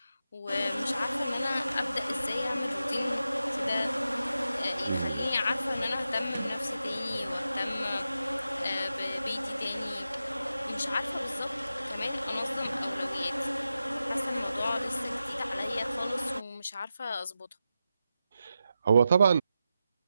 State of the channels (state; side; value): inverted; both; correlation -0.90